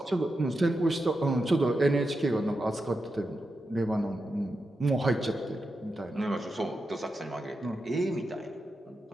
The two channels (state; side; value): normal; both; correlation 0.88